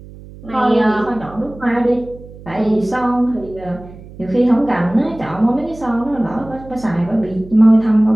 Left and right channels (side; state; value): right; noise; hum, 18 dB below the sound